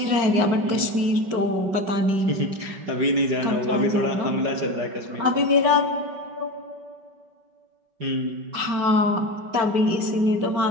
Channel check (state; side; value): late; left; 5.2 ms